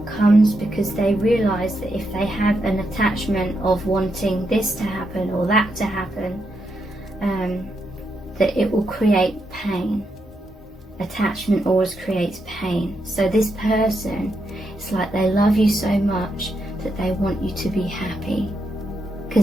because they realize that if they have an attachment of wanting this to happen or that to happen, that it will create pain. Attachment always creates pain. So this person, it's like they love you so much that they want you to be happy,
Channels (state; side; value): normal; both; correlation 0.82